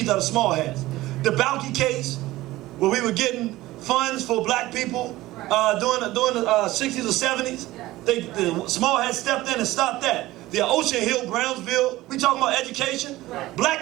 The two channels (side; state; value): left; quieter; 17.4 dB